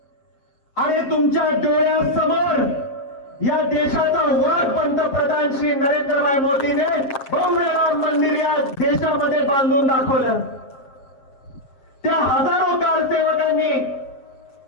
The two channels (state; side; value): late; right; 7.5 ms